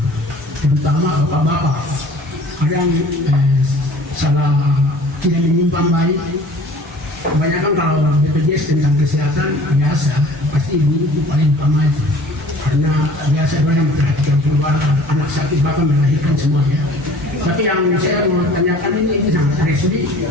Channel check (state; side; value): normal; both; correlation 0.48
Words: terutama bapak-bapak. Kadang salah tidak menyimpan baik. Kebanyakan kalau BPJS tentang kesehatan biasa, pasti ibu itu paling utama itu. Karena biasa mereka memperhatikan keluarga, anak sakit bahkan melahirkan semuanya. Tapi yang saya mau tanyakan ini sangat resmi.